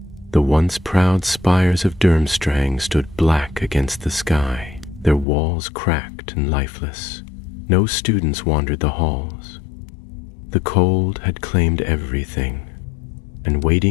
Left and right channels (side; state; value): right; drops out; at 5.2 s